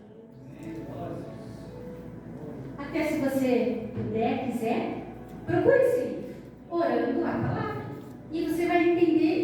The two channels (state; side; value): identical; both; correlation 1.00